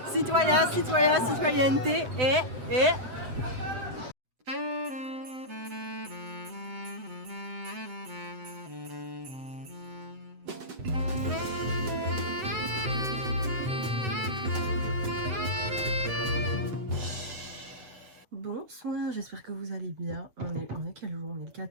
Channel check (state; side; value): late; left; 7.9 ms